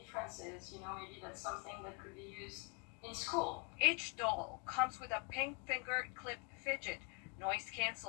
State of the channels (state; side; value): quieter; right; 32.3 dB